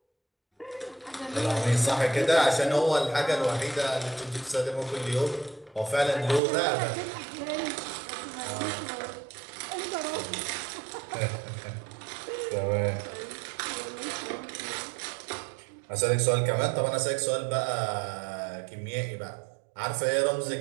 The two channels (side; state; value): left; drops out; at 6.4 s